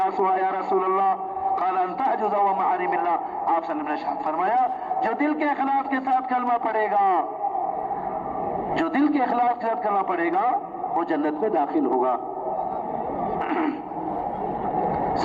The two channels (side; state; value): both; identical; correlation 1.00